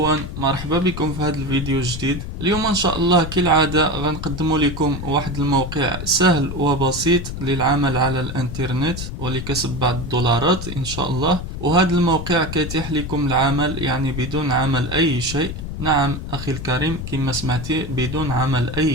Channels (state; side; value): noise; left; rumble, 7 dB below the sound